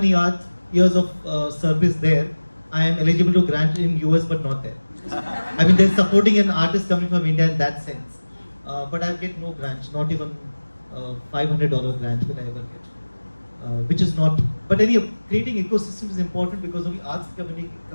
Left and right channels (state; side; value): inverted; both; correlation -1.00